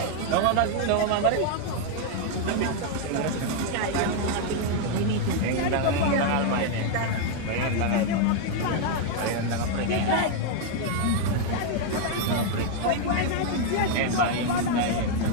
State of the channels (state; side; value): different; both; correlation 0.00